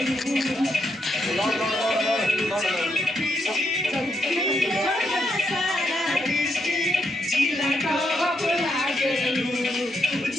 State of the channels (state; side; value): normal; both; correlation 0.79